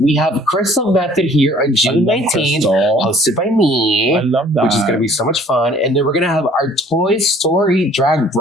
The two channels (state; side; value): normal; both; correlation 0.54